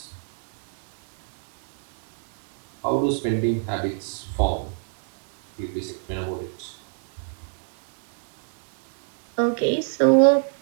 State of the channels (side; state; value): left; silent; 61 dB below the other